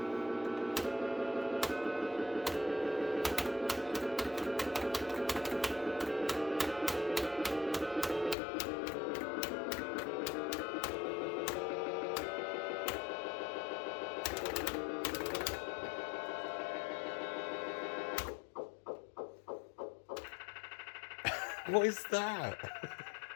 What is that?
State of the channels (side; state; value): right; drops out; at 8.3 s